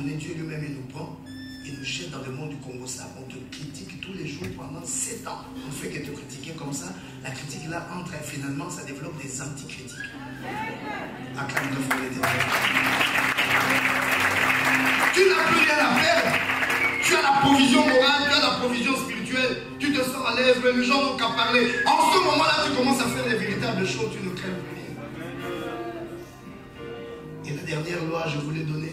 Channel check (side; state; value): both; identical; correlation 1.00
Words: Dieu lui-même, il nous prend, il nous jette dans le monde du Congo. Ça, on te critique tous les jours pendant 7 ans. On ne fait que te critiquer comme ça. La critique là entre et finalement, ça développe des anticritiques. Acclame le feu l'éternel. Tu n'as plus rien à perdre. Tu as la provision morale, tu as la provision spirituelle. Tu te sens à l'aise, mais les gens n'ont qu'à parler. En ce moment-là, tu commences à faire les véritables choses, tu ne crains plus rien. Et la dernière loi, je vous l'ai